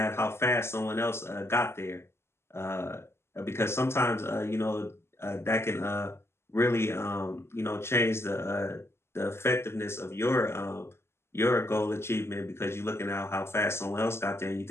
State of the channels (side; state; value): right; late; 0.12 ms